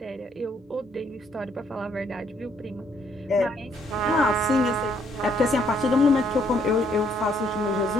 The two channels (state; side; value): normal; both; correlation 0.68